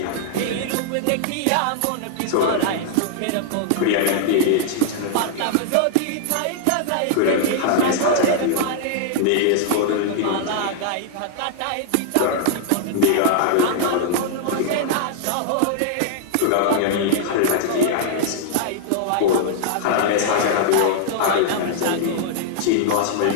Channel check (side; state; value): both; different; correlation -0.01